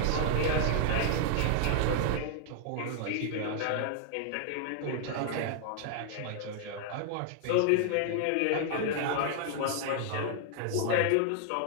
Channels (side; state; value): both; different; correlation 0.00